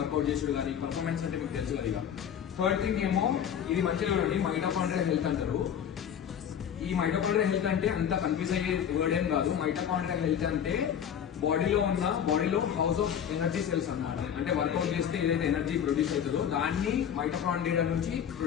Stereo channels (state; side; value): quieter; right; 8.8 dB